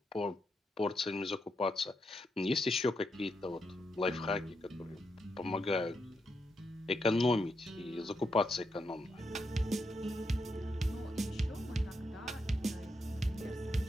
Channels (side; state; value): both; normal; correlation 0.82